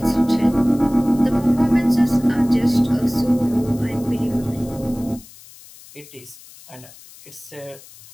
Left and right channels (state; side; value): noise; left; hiss, 21 dB below the sound